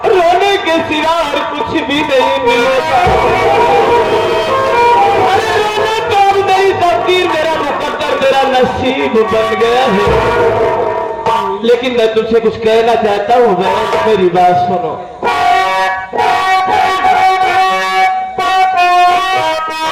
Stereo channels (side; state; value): both; identical; correlation 1.00